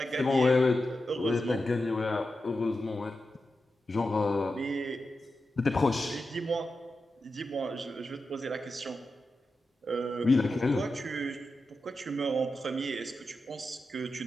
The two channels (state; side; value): normal; both; correlation 0.90